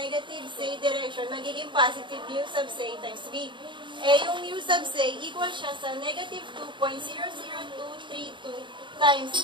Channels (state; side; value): late; left; 0.23 ms